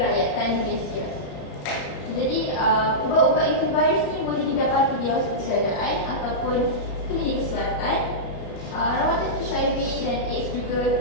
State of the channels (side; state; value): right; late; 33 ms